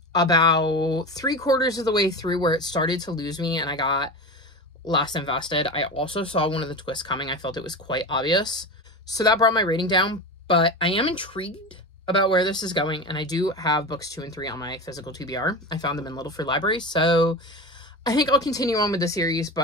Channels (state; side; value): normal; both; correlation 0.26